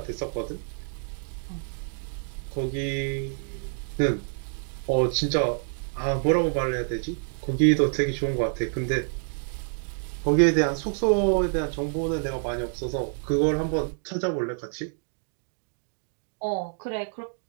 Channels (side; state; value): left; silent; 60 dB below the other